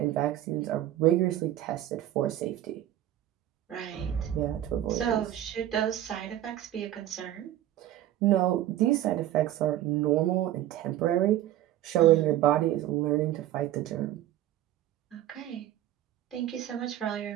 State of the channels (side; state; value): left; quieter; 13.1 dB